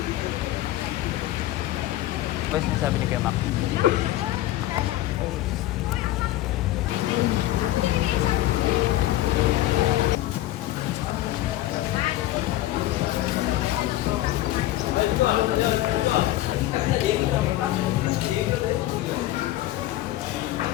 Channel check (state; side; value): quieter; right; 15.3 dB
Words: Ano sinasabi ni Kuya Mac?